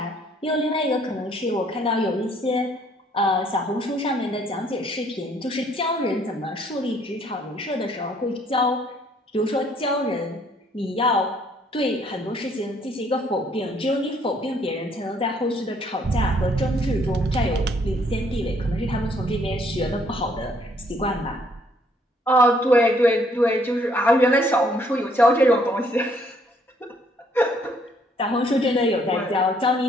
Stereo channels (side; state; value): both; normal; correlation 0.65